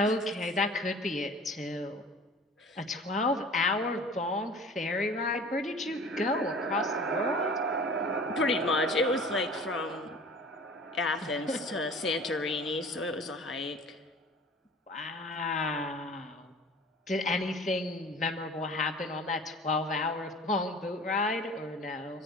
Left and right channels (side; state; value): both; normal; correlation 0.43